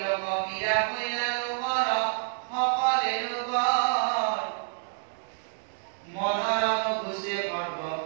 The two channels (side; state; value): left; silent; digital silence